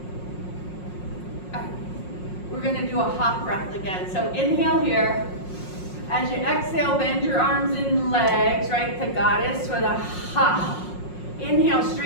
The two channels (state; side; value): late; right; 5.5 ms